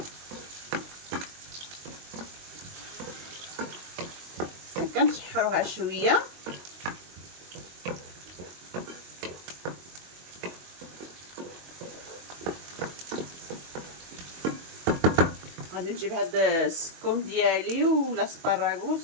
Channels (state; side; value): late; left; 22 ms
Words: كنشحروها شويه. غادي نجيب هاد السكوم ديالي ولا